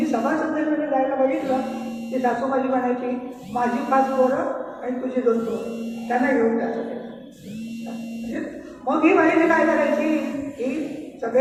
सभा संमेलनामध्ये जायला बघितलं की सासू माझी म्हणायची माझी 5 पोरं आणि तुझी 2 पोरं, त्यांना घेऊन जायचं. मग ही बाईने काय करायची, ही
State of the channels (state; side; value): identical; both; correlation 1.00